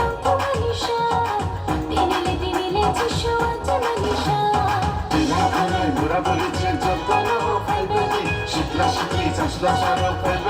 manisha Tinili tishu ate manisha dinakare mura boliche jotano faibedi shikla shikli chasla sharo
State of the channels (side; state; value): both; identical; correlation 1.00